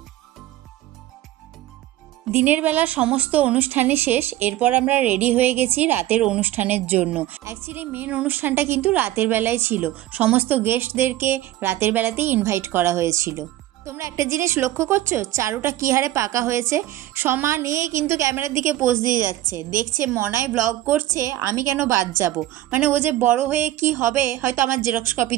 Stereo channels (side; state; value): left; quieter; 14.6 dB